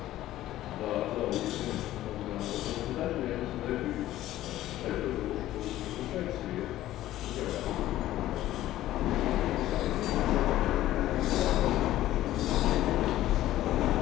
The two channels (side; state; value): right; quieter; 14.4 dB